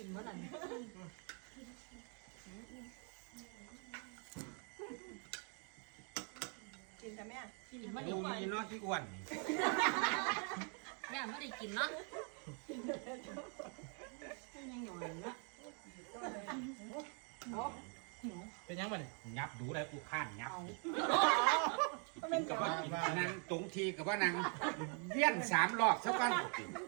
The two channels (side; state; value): left; quieter; 40.0 dB